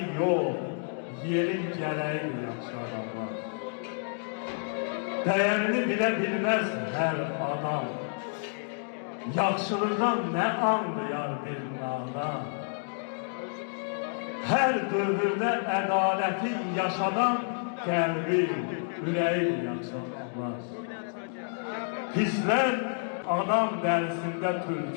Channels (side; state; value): right; silent; 58 dB below the other